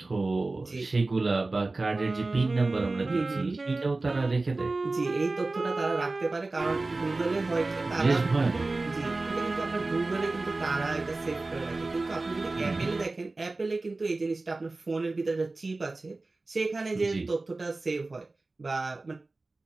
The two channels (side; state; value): left; quieter; 3.3 dB